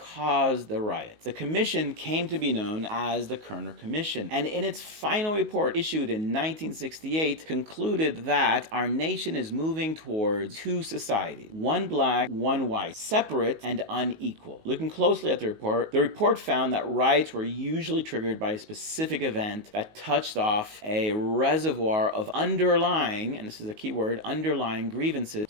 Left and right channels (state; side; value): late; left; 19 ms